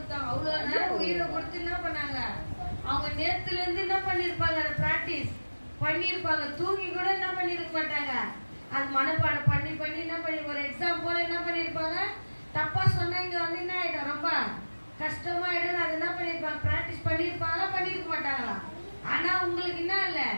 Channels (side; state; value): both; inverted; correlation -1.00